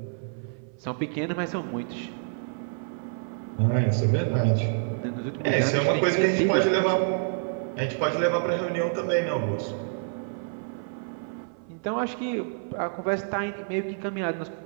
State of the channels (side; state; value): left; silent; 57 dB below the other